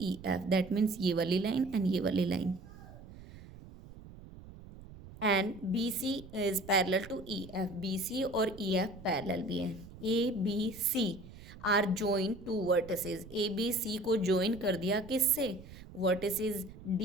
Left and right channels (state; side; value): noise; right; rumble, 17 dB below the sound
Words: EF, that means ये वाली line and ये वाली line, and BC is parallel to EF, BC और EF parallel भी है. ABC are join to vertices, ABC को ज्वाइन कर दिया किससे, वर्टिसेस